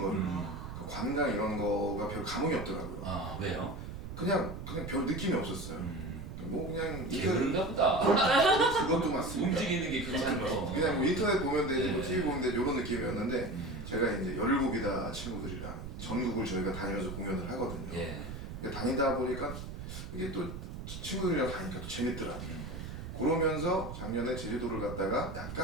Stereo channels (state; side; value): noise; right; rumble, 9 dB below the sound